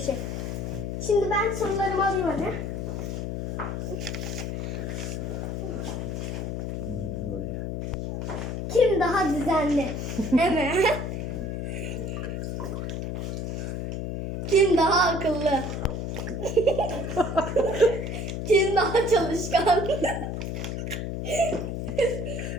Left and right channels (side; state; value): left; noise; hum, 3 dB below the sound